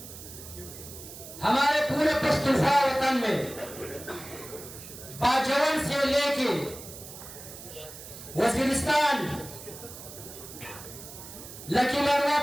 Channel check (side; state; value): right; noise; hiss, 14 dB below the sound